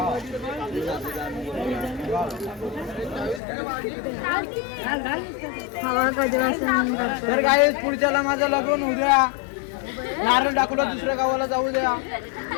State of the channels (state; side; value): drops out; right; at 3.4 s